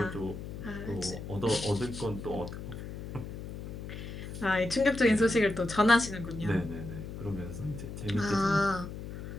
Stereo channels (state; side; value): noise; left; hum, 9 dB below the sound